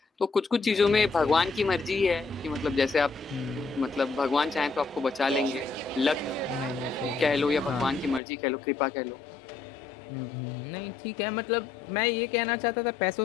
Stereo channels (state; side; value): drops out; right; at 8.2 s